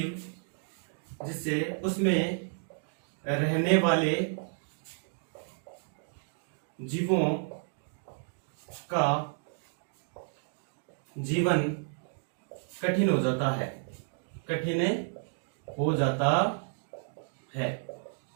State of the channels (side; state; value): left; silent; digital silence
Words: जिससे उसमें रहने वाले जीवों का जीवन कठिन हो जाता है, कठिन हो जाता है।